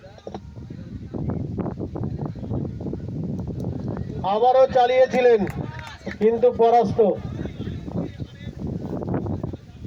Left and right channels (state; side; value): identical; both; correlation 1.00